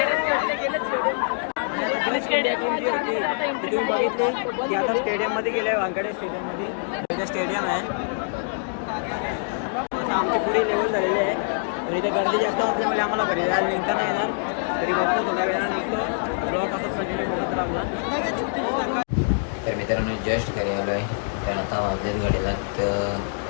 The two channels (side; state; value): right; silent; digital silence